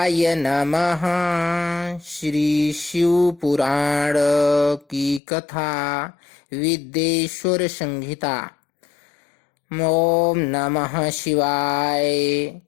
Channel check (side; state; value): right; drops out; at 5.2 s